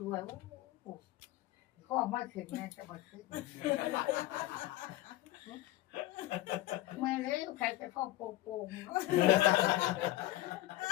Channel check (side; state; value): right; quieter; 16.3 dB